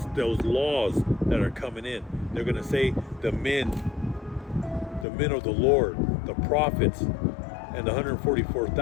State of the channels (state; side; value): drops out; right; at 5.1 s